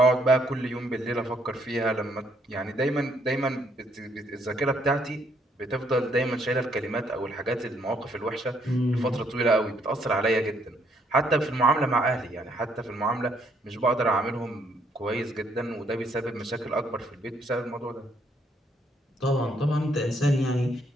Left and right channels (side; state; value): both; normal; correlation 0.70